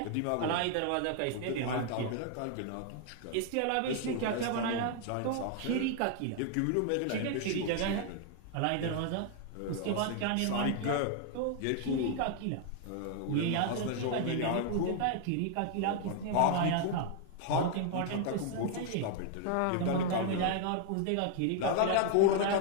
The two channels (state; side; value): different; both; correlation 0.00